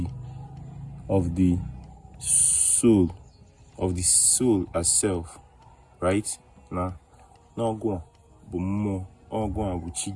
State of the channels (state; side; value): identical; both; correlation 1.00